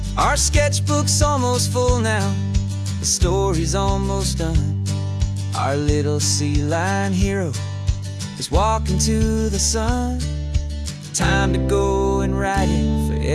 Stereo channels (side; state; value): both; identical; correlation 1.00